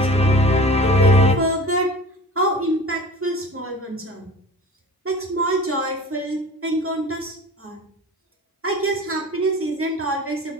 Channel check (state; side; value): normal; both; correlation 0.39